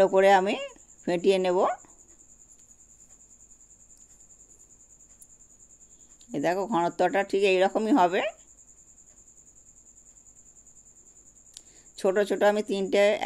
করে আমি ফেটিয়ে নেব। এই দেখো ঘনত্বটা ঠিক এইরকমই হবে। ছোট ছোট আমি 3টে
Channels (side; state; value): both; identical; correlation 1.00